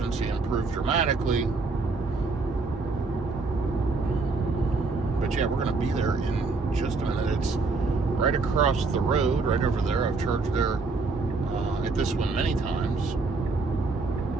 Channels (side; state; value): left; quieter; 4.0 dB